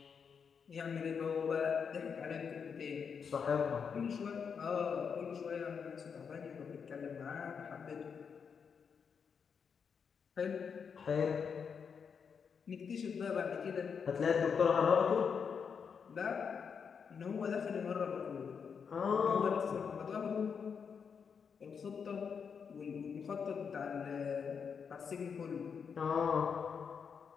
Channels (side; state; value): right; quieter; 6.4 dB